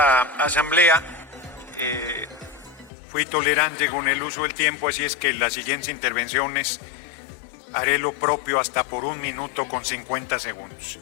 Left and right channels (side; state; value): right; drops out; at 2.9 s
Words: asamblea, fui tolerante con el uso del tiempo, así es que en las siguientes intervenciones haré lo propio hasta por 1 minuto con 50 segundos.